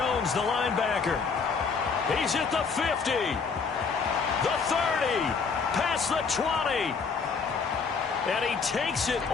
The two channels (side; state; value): right; quieter; 5.3 dB